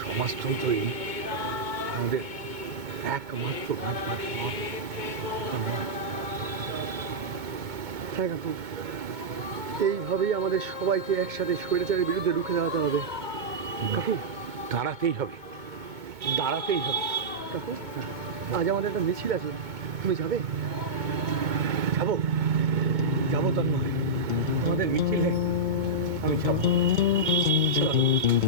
সমাজতন্ত্রই আমাদের একমাত্র বাঁচবার পথ। হ্যাঁ কাকু, এইভাবেই আমাদের সবাইকে একসাথে স্বৈরাচারের বিরুদ্ধে রুখে দাঁড়াতে হবে। কাকু দাঁড়াতেই হবে, দাঁড়াতেই হবে। কাকু আজ আমাদের একটা মিছিল আছে, তুমি যাবে? যাবো যাবো তন্ময়, আমাদের মিছিলে আমি যাবো। চলো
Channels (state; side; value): late; left; 2.2 ms